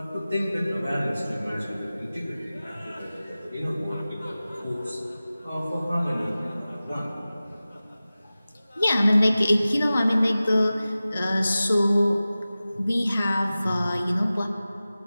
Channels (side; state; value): both; inverted; correlation -0.96